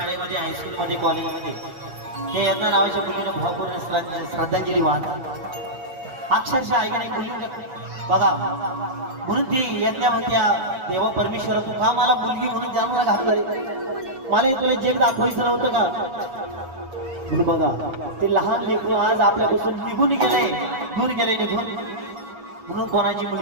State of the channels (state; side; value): late; left; 7.1 ms